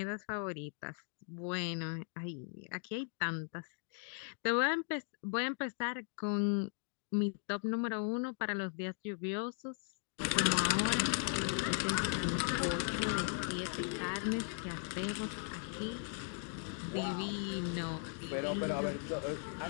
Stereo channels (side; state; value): right; silent; 52 dB below the other